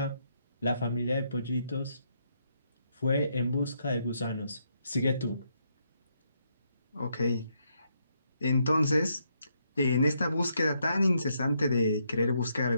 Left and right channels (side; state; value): both; inverted; correlation -0.76